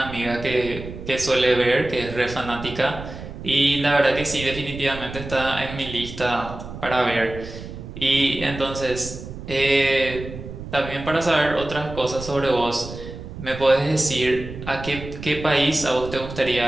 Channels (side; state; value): right; noise; rumble, 11 dB below the sound